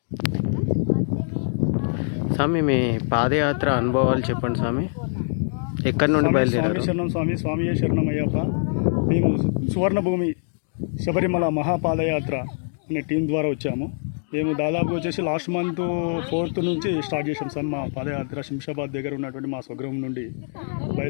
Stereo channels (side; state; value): right; silent; 63 dB below the other